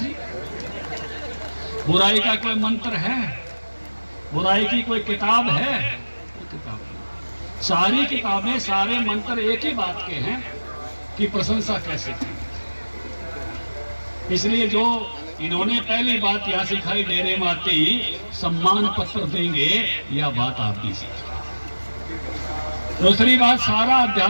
ले। बुराई का कोई मंत्र है? बुराई की कोई किताब है? कोई किताब नहीं। सारी किताबें, सारे मंत्र एक ही बात के हैं कि प्रशंसा कैसे की। इसलिए जो इन्होंने पहली बात यह सिखाई, डेरे में आते ही सम्मान पत्र देंगे, यह बात आप भी सीखी। दूसरी बात, सारा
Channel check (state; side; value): inverted; both; correlation -1.00